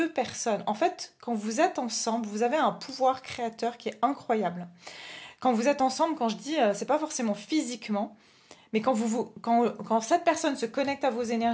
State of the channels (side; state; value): both; identical; correlation 1.00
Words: personnes. En fait, quand vous êtes ensemble, vous avez un pouvoir créateur qui est incroyable. Quand vous êtes ensemble, quand je dis, c'est pas forcément physiquement, mais quand cette personne se connecte à vos